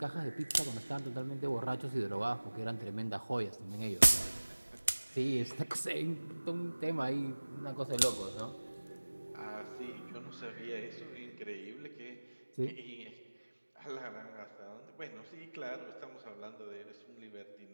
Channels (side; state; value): both; inverted; correlation -1.00